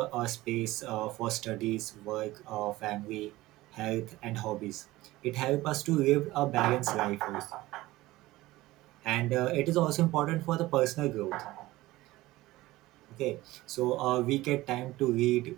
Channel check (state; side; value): quieter; left; 18.1 dB